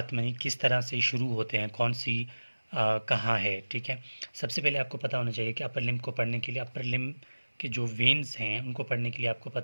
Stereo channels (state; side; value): inverted; both; correlation -1.00